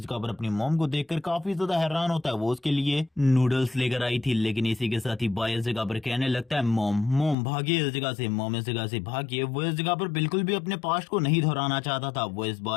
जगह पर अपनी मॉम को देखकर काफी ज्यादा हैरान होता है। वो उसके लिए नूडल्स लेकर आई थी, लेकिन इसी के साथ ही बाई इस जगह पर कहने लगता है मॉम भागिए इस जगह से, मॉम इस जगह से भागिए। वो इस जगह पर बिल्कुल भी अपने पास्ट को नहीं दोहराना चाहता था। वो इस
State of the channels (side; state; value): right; drops out; at 7.4 s